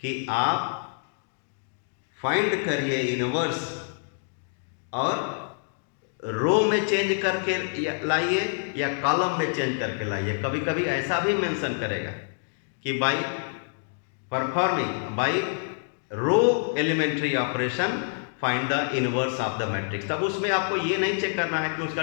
आप फाइंड करिए इनवर्स और रो में चेंज करके लाइए या कॉलम में चेंज करके लाइए। कभी कभी ऐसा भी मेंशन करेगा कि by performing by row elementary operation find the inverse of the matrix. तब उसमें आपको ये नहीं चेक करना है कि उसका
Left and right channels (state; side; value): silent; right; digital silence